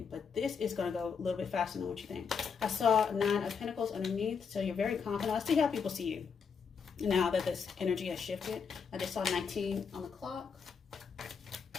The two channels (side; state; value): right; quieter; 6.1 dB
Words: But this is going to go a little bit faster than what you think. I saw 9 of Pentacles underneath, so you're very confident. Let's see how people see you now that this energy has shifted. I just saw 19 on the clock.